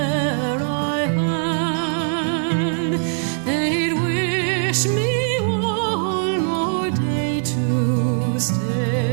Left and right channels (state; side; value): silent; left; digital silence